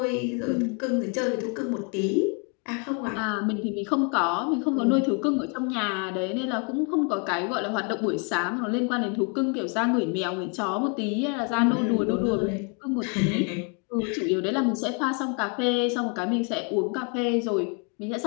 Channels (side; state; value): right; quieter; 36.4 dB